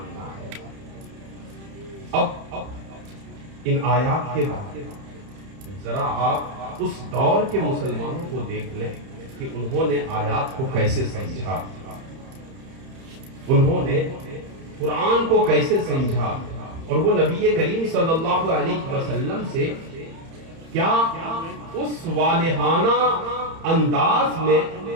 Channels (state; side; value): late; left; 31 ms